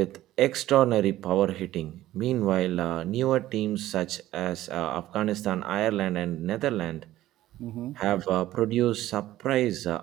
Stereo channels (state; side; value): quieter; left; 14.7 dB